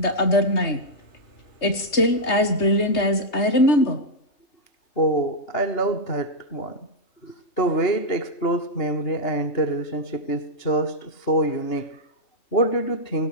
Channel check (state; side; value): late; right; 3.3 ms